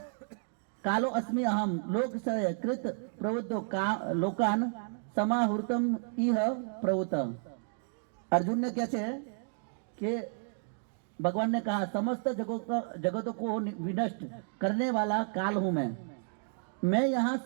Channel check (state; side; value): silent; left; 56 dB below the other